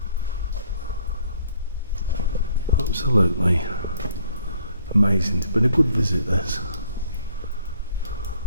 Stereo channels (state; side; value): inverted; both; correlation -0.63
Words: Absolutely amazing. It's been a good visit, this.